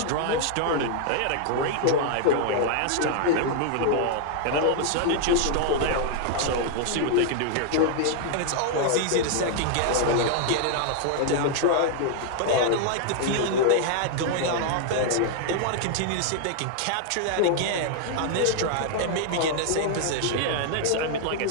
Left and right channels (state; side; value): different; both; correlation 0.00